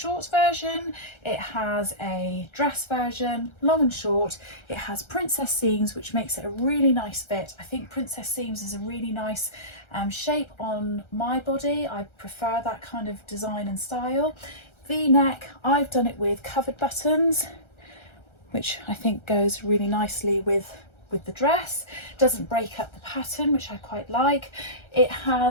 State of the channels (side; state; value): right; late; 1.3 ms